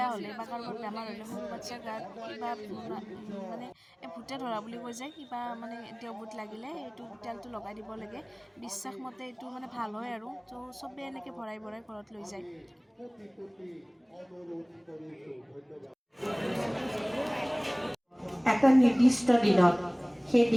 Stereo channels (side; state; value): both; identical; correlation 1.00